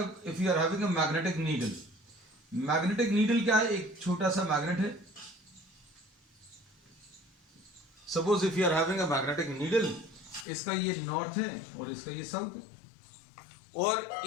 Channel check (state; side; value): drops out; right; at 10.5 s